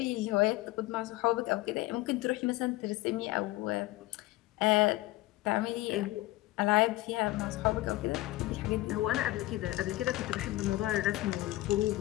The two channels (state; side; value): quieter; right; 18.0 dB